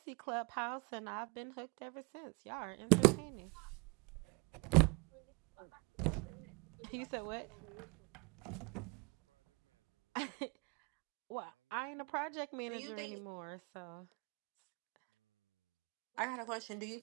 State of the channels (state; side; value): quieter; left; 30.7 dB